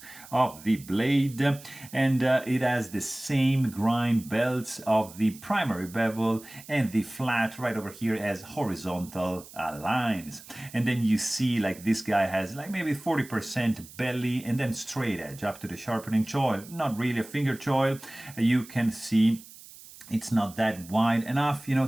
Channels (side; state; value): right; noise; hiss, 19 dB below the sound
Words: of the blade, and it has the same grind belts of the primary bevel, and the flat right over here has horizontal lines. And then you see like this guy has like maybe 40% belly and then straight edge up to the sharpening choil. Not really a finger choil. You can see it's not that wide enough, you know,